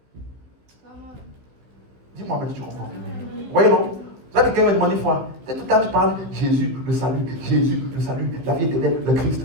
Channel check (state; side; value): late; left; 15 ms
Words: Dis-moi, mais tu comprends. Vous voyez, non? Ça, quelqu'un m'a demandé une fois. Tout le temps, tu parles Jésus, le salut, la vie éternelle, le Christ.